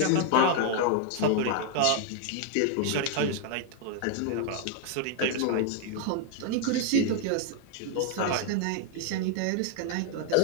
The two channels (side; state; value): both; different; correlation 0.00